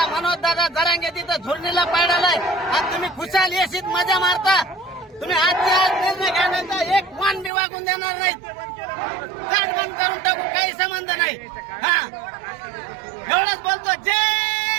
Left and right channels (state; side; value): drops out; left; at 7.5 s